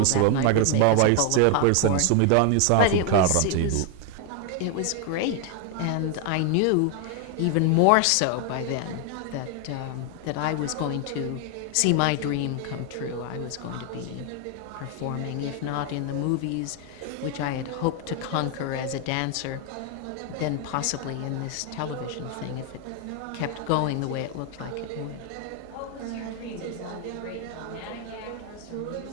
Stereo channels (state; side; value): different; both; correlation 0.00